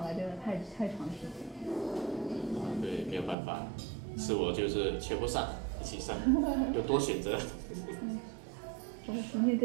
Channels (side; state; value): left; drops out; at 3.4 s